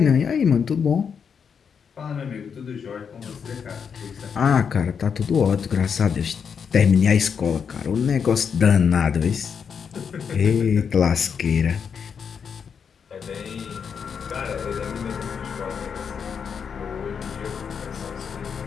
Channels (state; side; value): quieter; right; 6.7 dB